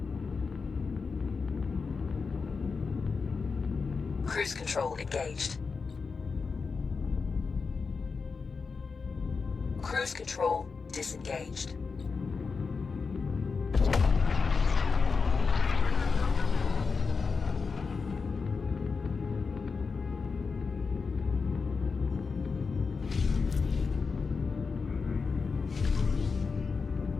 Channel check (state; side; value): quieter; right; 4.9 dB